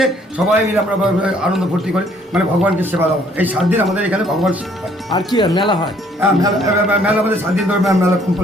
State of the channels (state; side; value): normal; both; correlation 0.63